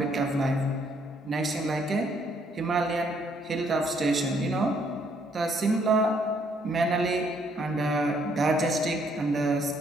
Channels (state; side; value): normal; both; correlation 0.68